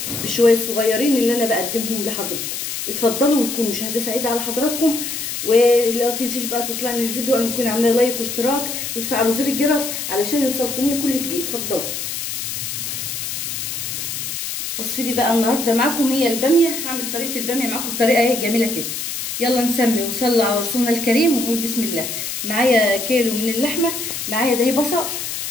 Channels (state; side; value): noise; left; hiss, 4 dB below the sound